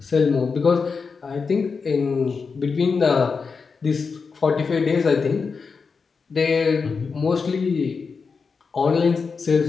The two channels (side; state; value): right; quieter; 5.1 dB